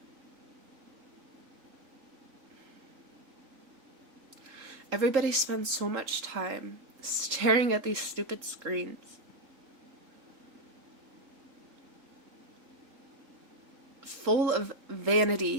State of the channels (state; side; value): late; left; 3.8 ms